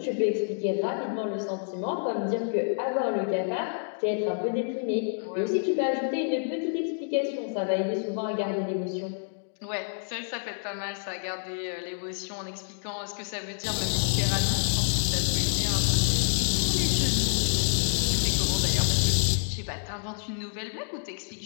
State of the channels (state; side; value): silent; right; digital silence